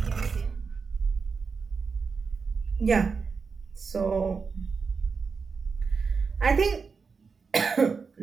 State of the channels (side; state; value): left; quieter; 5.1 dB